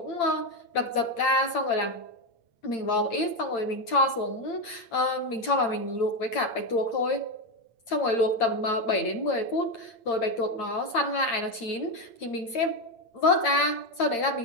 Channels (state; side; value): late; right; 8.8 ms